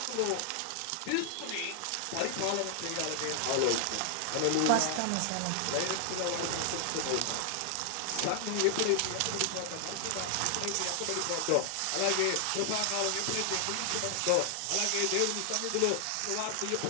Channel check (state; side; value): different; both; correlation 0.00